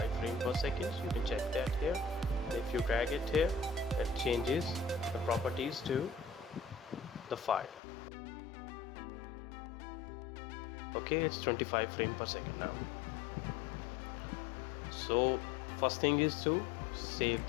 frames per second. You can check that here. If you drag it here, it changes the properties to the file. Okay, it's 25 frames per second now. So first thing is to save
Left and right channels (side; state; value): right; drops out; at 7.8 s